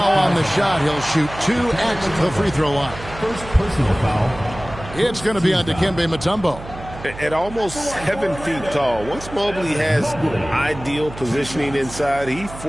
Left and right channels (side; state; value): right; noise; hum, 14 dB below the sound